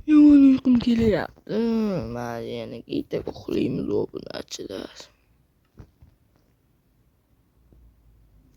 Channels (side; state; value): both; identical; correlation 1.00